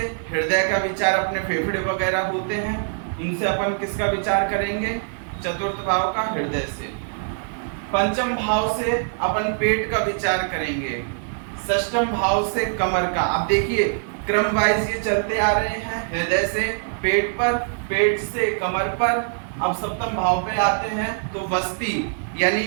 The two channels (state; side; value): silent; left; digital silence